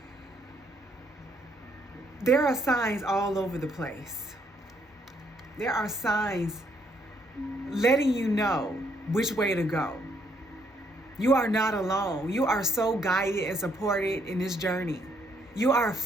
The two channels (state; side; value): normal; both; correlation 0.71